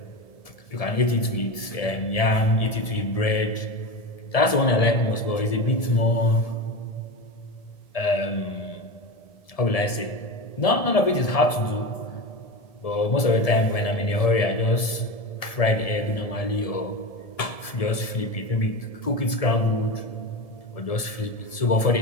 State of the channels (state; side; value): late; right; 1.7 ms